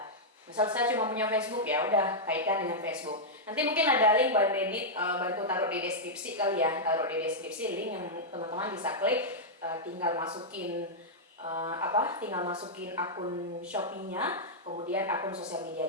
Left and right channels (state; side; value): normal; both; correlation -0.07